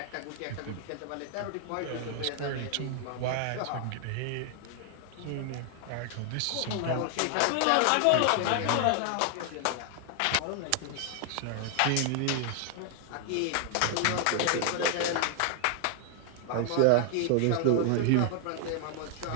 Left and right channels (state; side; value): different; both; correlation 0.00